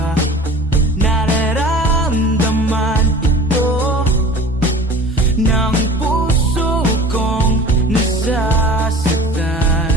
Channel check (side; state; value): both; normal; correlation 0.41